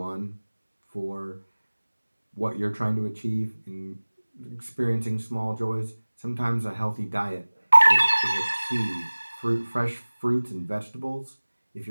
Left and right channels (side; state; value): both; inverted; correlation -1.00